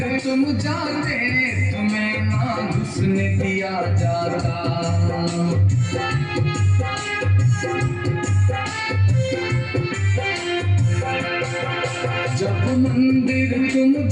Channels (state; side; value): identical; both; correlation 1.00